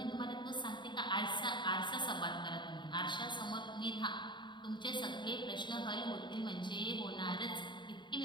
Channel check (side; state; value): right; late; 0.22 ms